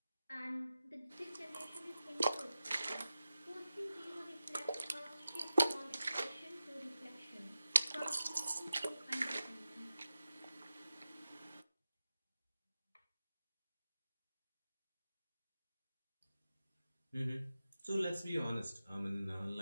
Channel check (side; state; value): both; inverted; correlation -0.93